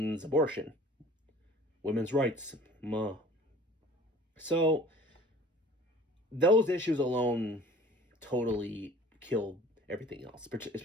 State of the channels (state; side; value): normal; both; correlation 0.48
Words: abortion, women's rights. So those issues alone totally killed everything else,